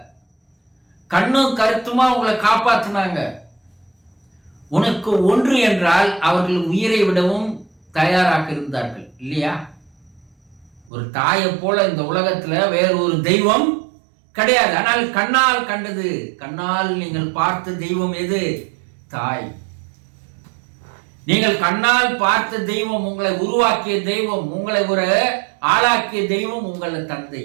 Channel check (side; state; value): left; drops out; at 10.9 s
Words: கண்ணும் கருத்துமா உங்களை காப்பாத்தினாங்க. உனக்கு ஒன்று என்றால் அவர்கள் உயிரை விடவும் தயாராக இருந்தார்கள் இல்லையா? ஒரு தாயை போல இந்த உலகத்துல வேற ஒரு தெய்வம் கிடையாது. ஆனால் கண்ணால் கண்டது, கண்ணால் நீங்கள் பார்த்த தெய்வம் எது? தாய். நீங்கள் கண்ணால் பார்த்த தெய்வம், உங்களை உருவாக்கிய தெய்வம், உங்களை ஒரு ஆளாக்கிய தெய்வம் உங்கள் தந்தை.